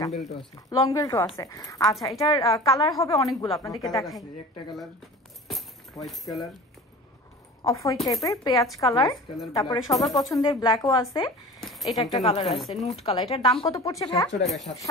লং বেল্টও আছে। আচ্ছা, এটার কালার হবে অনেকগুলো, আপনাদেরকে দেখাই। একটা colour white colour, off white টাইপের, পেঁয়াজ কালার, তারপরে সবার পছন্দের ব্ল্যাকও আছে। এটা একটা কালার আছে নুট কালার। এটার দাম কত পড়ছে ভাই?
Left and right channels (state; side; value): normal; both; correlation 0.38